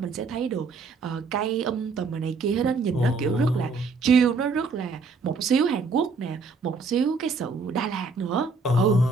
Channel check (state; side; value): quieter; left; 4.2 dB